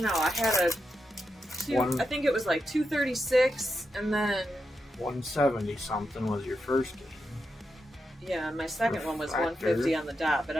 know. I had I think it was like 236, and then 170 something was your first game. Yeah, my second one was 150 on the dot, but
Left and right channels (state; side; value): normal; both; correlation 0.86